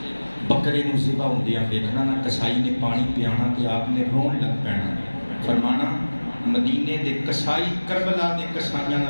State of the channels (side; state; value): both; inverted; correlation -1.00